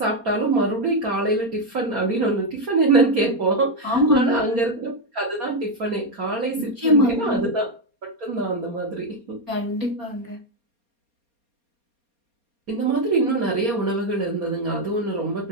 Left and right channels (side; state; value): left; late; 4.2 ms